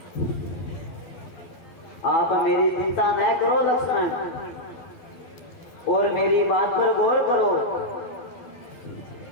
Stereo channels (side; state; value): right; late; 12 ms